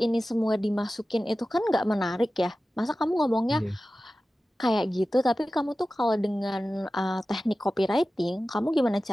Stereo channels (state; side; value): normal; both; correlation 0.95